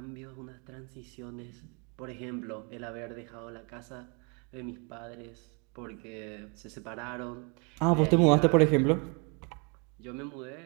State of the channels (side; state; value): left; quieter; 33.3 dB